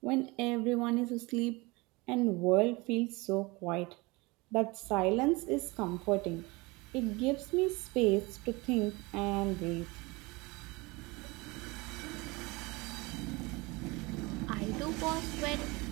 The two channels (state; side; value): quieter; left; 24.4 dB